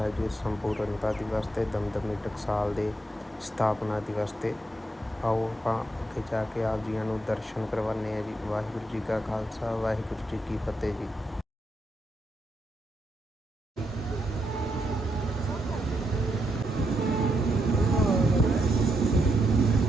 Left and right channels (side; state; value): both; normal; correlation 0.81